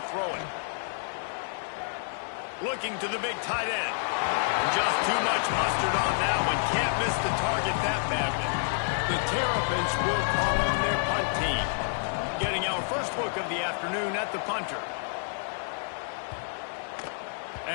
throw it. Looking to the big tight end. Just too much mustard on that one. Can't miss the target that badly. The Terrapins will call on their punt team. Getting our first look of the afternoon at the punter.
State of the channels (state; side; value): silent; right; digital silence